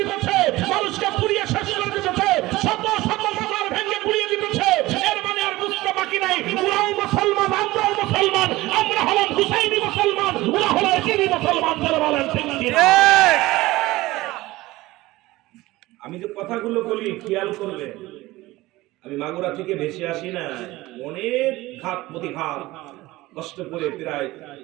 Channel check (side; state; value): left; quieter; 18.8 dB